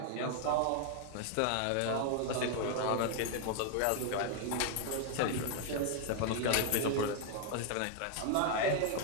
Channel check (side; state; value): both; different; correlation 0.00